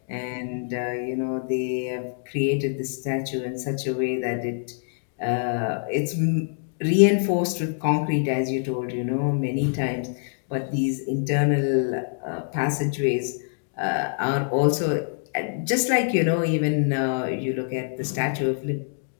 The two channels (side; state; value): right; silent; digital silence